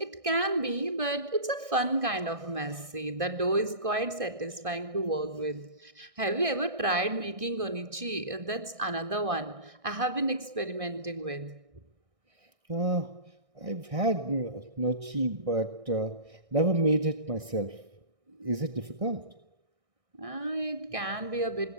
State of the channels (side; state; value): left; late; 1.6 ms